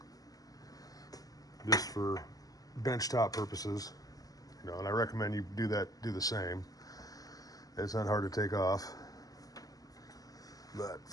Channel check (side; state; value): right; late; 0.17 ms